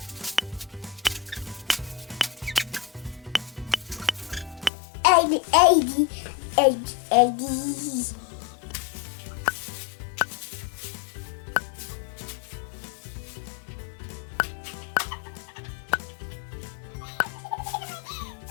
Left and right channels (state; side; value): drops out; right; at 4.7 s